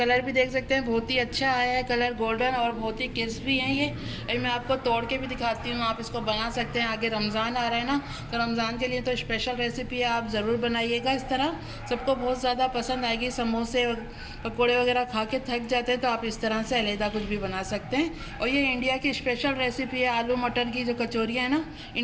भी देख सकते हैं, बहुत ही अच्छा आया है कलर, गोल्डन और बहुत ही क्रिस्पी है ये। अभी मैं आपको तोड़ के भी दिखाती हूँ, आप इसको बना सकते हैं। आगे रमज़ान आ रहा है ना, तो रमज़ान के लिए तो स्पेशल रेसिपी है, आप ज़रूर बनाइएगा इस तरह, सबको बहुत ज़्यादा पसंद आएगी। समोसे पकौड़े वगैरह खा के थक जाते हैं तो आप इस तरह से अलहदा कुछ भी बना सकते हैं। और ये इंडिया की स्पेशल रेसिपी है, आलू मटर की जो कचौरियाँ हैं ना,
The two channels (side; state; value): both; identical; correlation 1.00